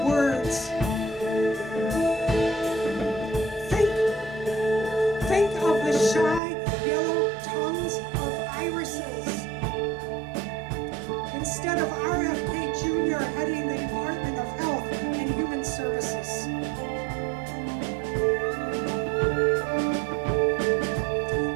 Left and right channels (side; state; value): left; drops out; at 6.4 s